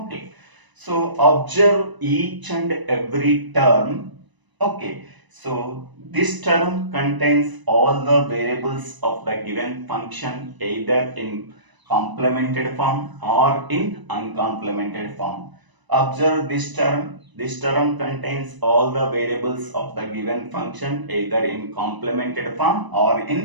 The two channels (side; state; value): left; late; 1.0 ms